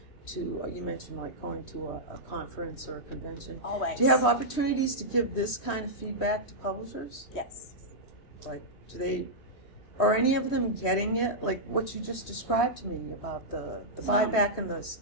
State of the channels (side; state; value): right; late; 3.1 ms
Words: to, you mentioned like going to a conference or a convention? Always. Do you have opportunities to give this kind of feedback to publishers? Yes. Like, are any of them getting it? Like what you just described to me about the buyback and the